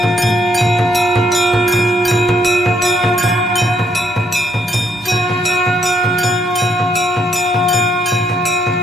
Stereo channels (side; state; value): both; normal; correlation 0.72